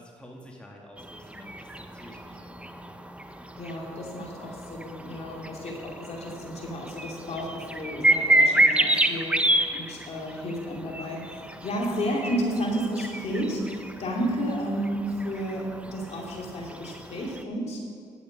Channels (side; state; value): both; normal; correlation 0.56